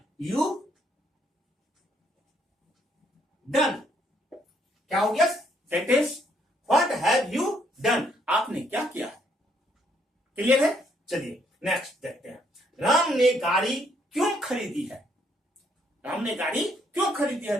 यू डन, क्या हो गया sentence, what have you done, आपने क्या किया है। क्लियर है, चलिए नेक्स्ट देखते हैं, राम ने गाड़ी क्यों खरीदी है, राम ने गाड़ी क्यों खरीदी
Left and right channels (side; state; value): both; normal; correlation 0.70